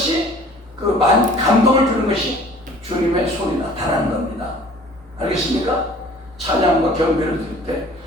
그 감동을 주는 것이 주님의 손이 나타나는 겁니다. 알겠습니까? 찬양과 경배를 드릴 때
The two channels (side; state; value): both; normal; correlation 0.50